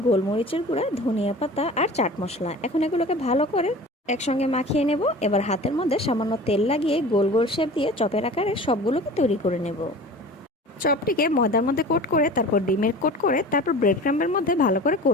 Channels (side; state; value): both; normal; correlation 0.39